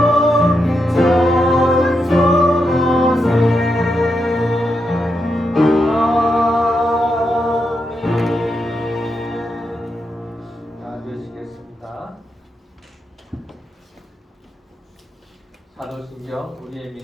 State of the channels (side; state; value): both; normal; correlation 0.84